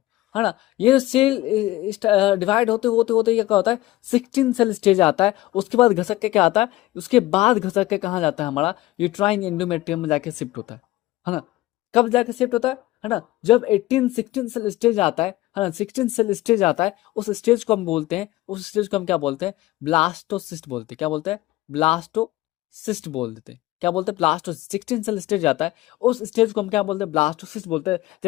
है ना। ये जो सेल डिवाइड होते होते होते ये क्या होता है, 16 सेल स्टेज आता है। उसके बाद घसक के क्या आता है, उसके बाद घसक के कहाँ जाता है, हमारा यूट्राइन एंडोमेट्रियम में जाके शिफ्ट होता है ना। कब जाके शिफ्ट होता है ना, जब 16 सेल स्टेज आता है ना, 16 सेल स्टेज आता है, उस स्टेज को हम बोलते हैं, उस स्टेज को हम क्या बोलते हैं, ब्लास्टोसिस्ट बोलते हैं। क्या बोलते हैं, ब्लास्टोसिस्ट बोल देते हैं। क्या बोलते हैं, ब्लास्टोसिस्ट। 16 सेल स्टेज आता है, उस स्टेज को हम क्या बोलते हैं, ब्लास्टोसिस्ट बोलते हैं।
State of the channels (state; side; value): quieter; right; 17.3 dB